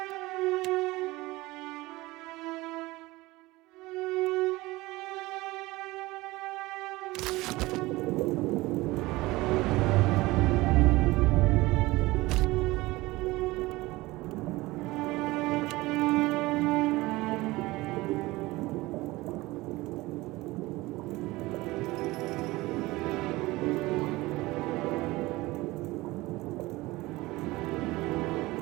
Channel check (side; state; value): left; quieter; 20.2 dB